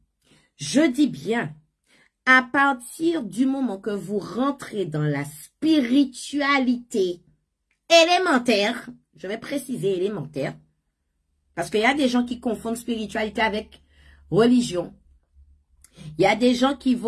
à partir du moment que vous rentrez dans la spiritualité élémentaire, je vais préciser élémentaire, parce qu'il y a des gens qui confondent spiritualité avec religion. Il y a des gens qui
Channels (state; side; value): identical; both; correlation 1.00